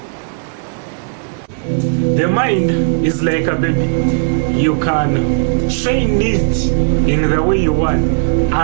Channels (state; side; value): silent; left; digital silence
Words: The mind is like a baby. You can train it in the way you want,